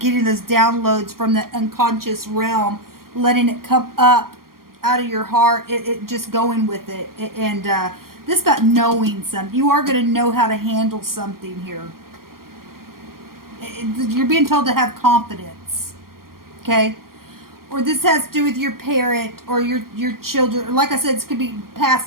those downloads from the unconscious realm, letting it come up out of your heart, it just going with it. And this is about knowing something. You are going to know how to handle something here. You're being told to have confidence. Okay? Or this has to do with your parent or your children. Like I said, this could be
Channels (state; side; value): late; left; 0.92 ms